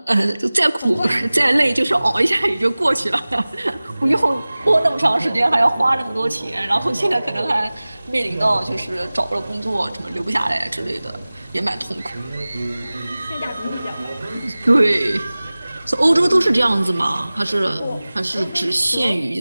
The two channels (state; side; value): inverted; both; correlation -0.99